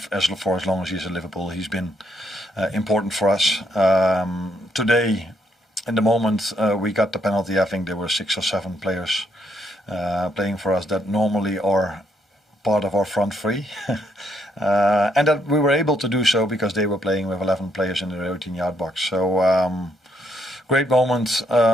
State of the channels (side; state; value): both; normal; correlation 0.74